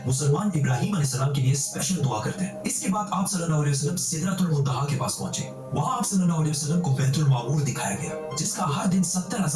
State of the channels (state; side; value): identical; both; correlation 1.00